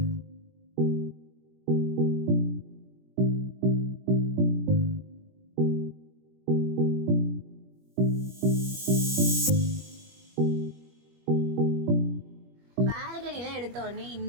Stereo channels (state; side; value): late; left; 21 ms